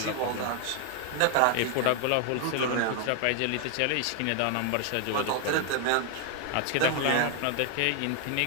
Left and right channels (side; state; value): both; different; correlation 0.01